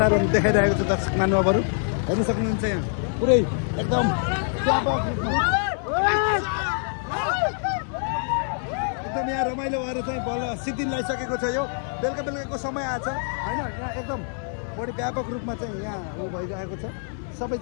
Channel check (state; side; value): silent; right; 62 dB below the other